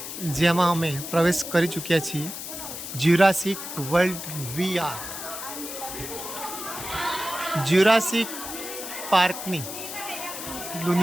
જેમાં અમે પ્રવેશ કરી ચૂક્યા છીએ. જ્યુરાસિક વર્લ્ડ VR જ્યુરાસિક પાર્કની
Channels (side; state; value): left; noise; hiss, 8 dB below the sound